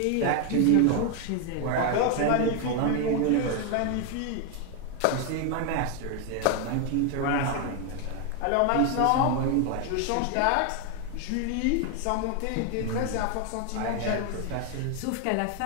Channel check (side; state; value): both; different; correlation 0.01